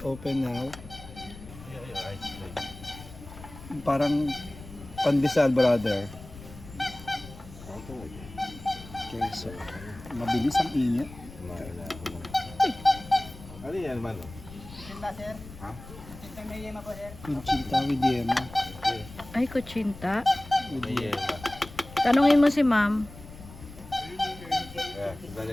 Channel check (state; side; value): noise; left; rumble, 16 dB below the sound